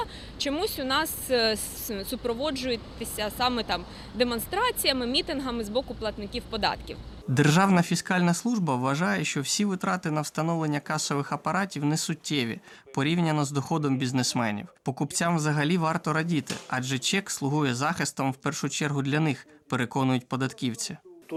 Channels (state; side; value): identical; both; correlation 1.00